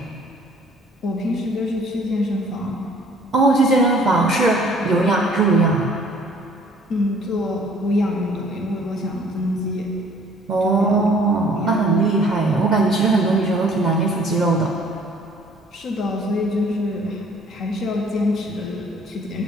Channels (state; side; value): normal; both; correlation 0.56